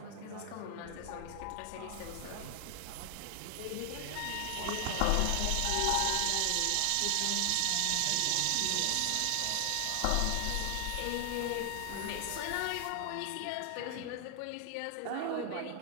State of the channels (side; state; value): both; different; correlation 0.00